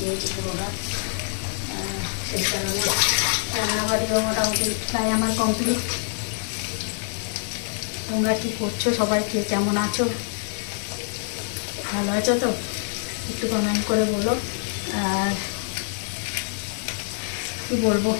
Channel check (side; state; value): right; silent; digital silence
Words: হয়েছে পুরোটা, সেই কারণে রান্নাবাড়িও মোটামুটি প্রায় আমার কমপ্লিট। তোমরা কী করছো? সবাই কে কেমন আছো? ভালো আছো তো? একটু কমেন্ট করে বলো। আর কী বলবো,